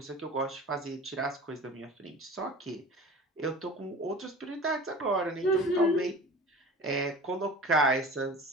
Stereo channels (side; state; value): both; normal; correlation 0.39